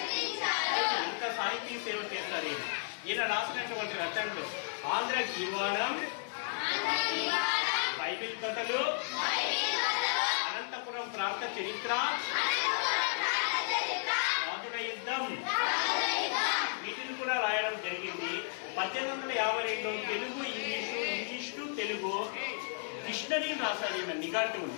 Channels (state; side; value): silent; right; digital silence